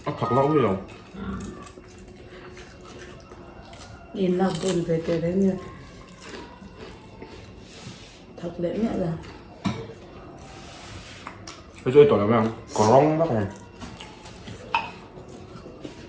thật lâu rồi nhìn lòng buồn về cái đấy như thật lẽ mẹ là cái chơi tuổi là mấy không có rong bác này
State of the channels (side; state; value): both; identical; correlation 1.00